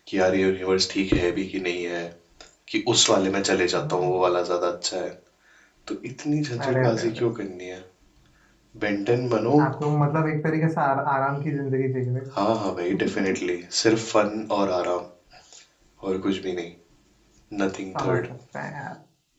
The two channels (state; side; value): identical; both; correlation 1.00